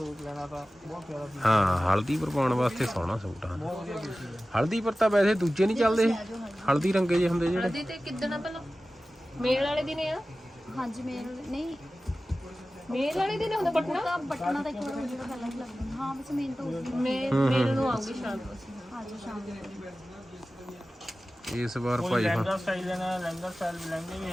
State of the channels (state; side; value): normal; both; correlation 0.96